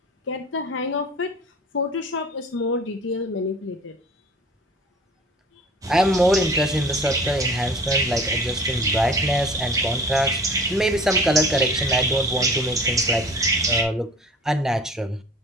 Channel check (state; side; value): normal; both; correlation 0.44